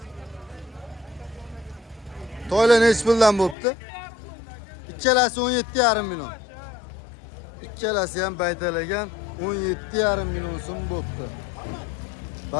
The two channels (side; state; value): right; drops out; at 3.6 s